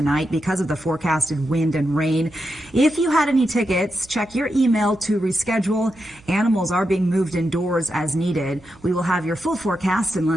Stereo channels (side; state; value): right; noise; hum, 26 dB below the sound